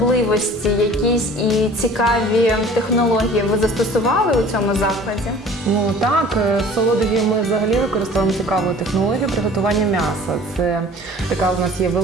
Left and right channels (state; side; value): normal; both; correlation 0.47